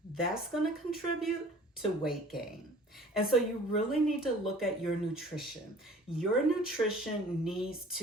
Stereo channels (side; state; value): both; normal; correlation 0.49